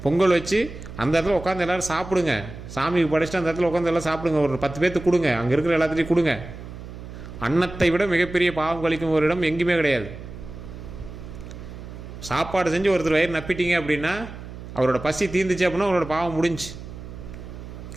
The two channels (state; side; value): noise; right; hum, 12 dB below the sound